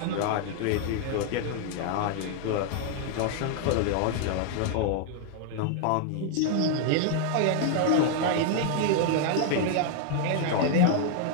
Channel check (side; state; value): both; different; correlation 0.00